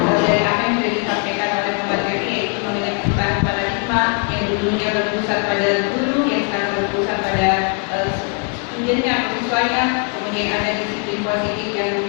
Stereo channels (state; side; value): quieter; right; 38.0 dB